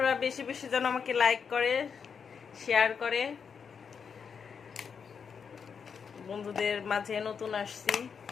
বেশি বেশি যেন আমাকে লাইক করে, শেয়ার করে। বন্ধুদের মাঝে নতুন আসছি,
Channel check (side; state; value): right; quieter; 6.4 dB